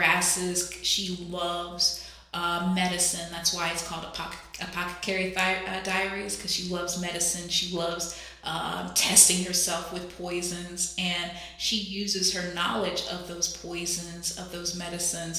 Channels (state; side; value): identical; both; correlation 1.00